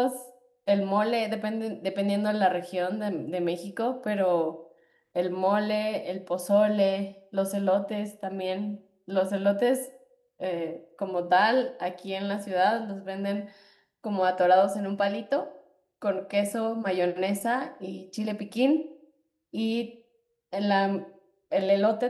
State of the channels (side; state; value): both; identical; correlation 1.00